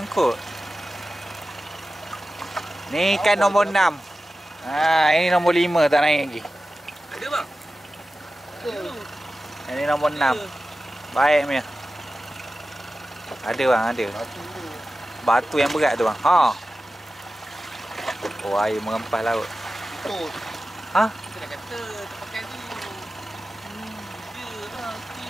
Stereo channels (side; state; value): both; normal; correlation 0.94